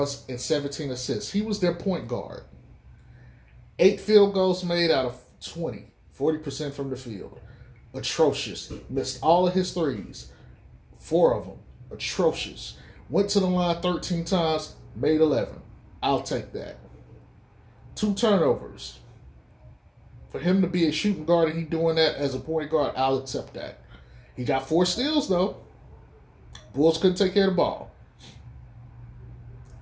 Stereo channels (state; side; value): identical; both; correlation 1.00